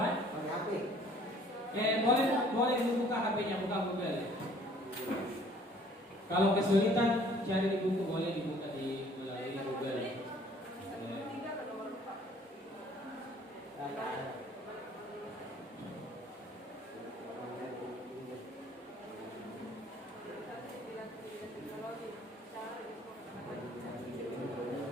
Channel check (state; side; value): normal; both; correlation 0.56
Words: Pakai HP. Boleh dibuka HP-nya, buka Google. Kalau kesulitan cari di buku, boleh dibuka di melalui Google. Tiga ke nomor 4.